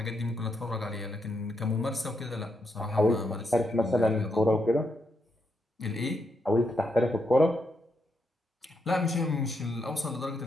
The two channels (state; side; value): normal; both; correlation 0.80